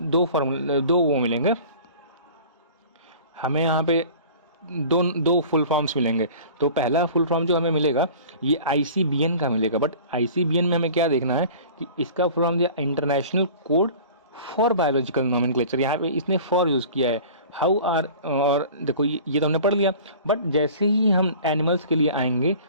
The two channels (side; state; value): both; inverted; correlation -0.43